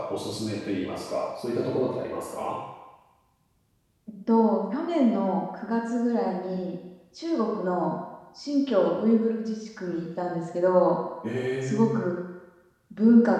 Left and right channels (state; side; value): identical; both; correlation 1.00